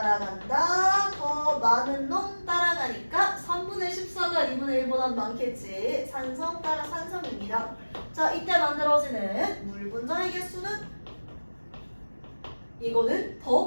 더 많은 놈 따라가니까 3분의 14가 2분의 1보다 많겠지. 산성 따라 산성입니다. 자, 이때 만들어지는 물 분자의 개수는 이거는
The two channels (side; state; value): both; inverted; correlation -1.00